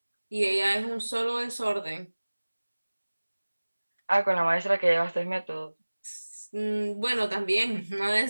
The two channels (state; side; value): inverted; both; correlation -1.00